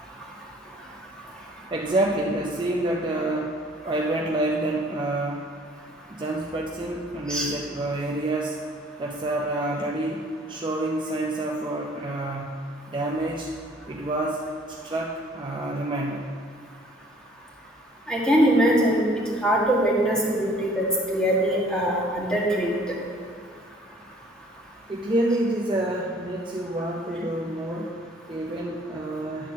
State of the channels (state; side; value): normal; both; correlation 0.56